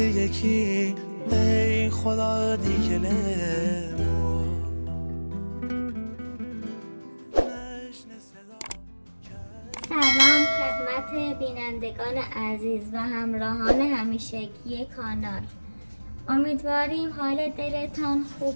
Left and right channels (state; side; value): inverted; both; correlation -1.00